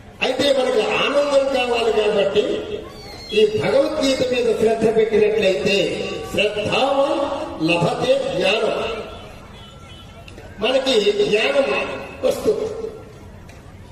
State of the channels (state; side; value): identical; both; correlation 1.00